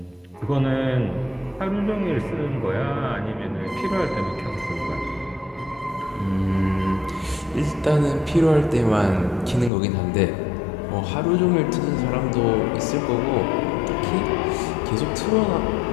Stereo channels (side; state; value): right; drops out; at 9.7 s